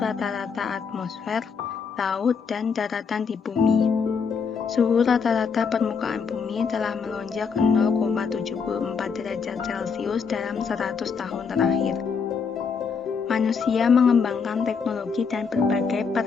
atmosfer, laut, dan daratan di bumi. Suhu rata-rata permukaan bumi telah melonjak 0,74 derajat Celcius dalam 100 tahun terakhir. Manusia mengembangkan teknologi dan berbagai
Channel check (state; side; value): quieter; right; 5.8 dB